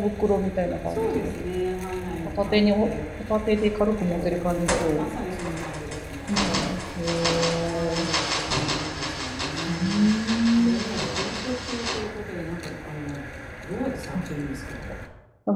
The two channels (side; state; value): both; identical; correlation 1.00